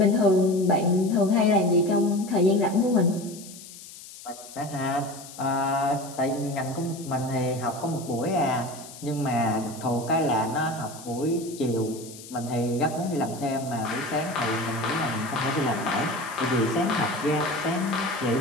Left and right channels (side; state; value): left; noise; hiss, 16 dB below the sound